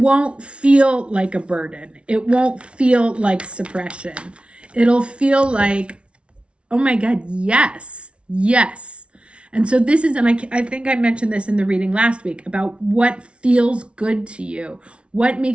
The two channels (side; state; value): left; late; 0.059 ms